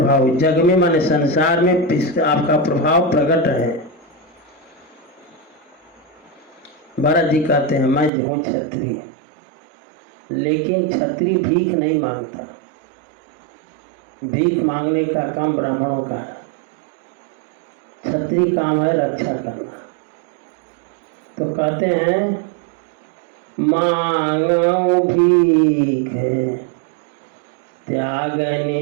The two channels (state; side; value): drops out; left; at 8.1 s